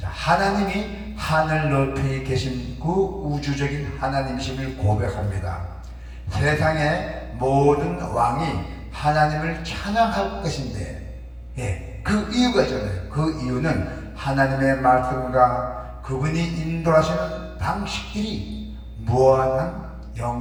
하나님이 하늘 높이 계신 그 우주적인 하나님이심을 고백합니다. 세상의 모든 왕이 하나님을 찬양할 것인데, 그 이유가 있잖아요. 그 이유는 하나님의 말씀과 그분이 인도하시는 방식들이 무한한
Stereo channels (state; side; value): identical; both; correlation 1.00